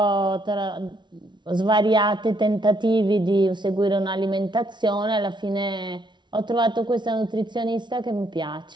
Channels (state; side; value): late; left; 0.22 ms